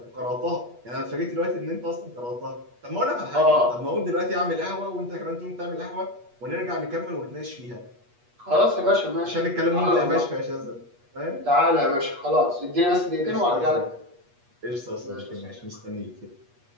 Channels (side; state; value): left; late; 8.3 ms